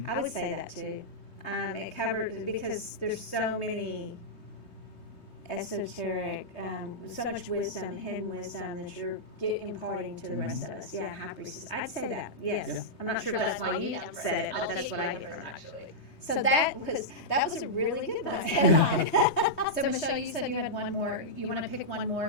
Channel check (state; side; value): late; right; 3.2 ms